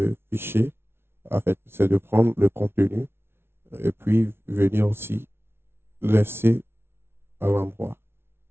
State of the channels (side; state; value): left; late; 0.12 ms